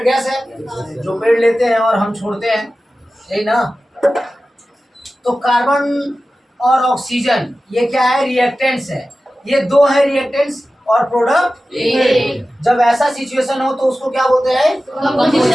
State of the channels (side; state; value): both; normal; correlation 0.95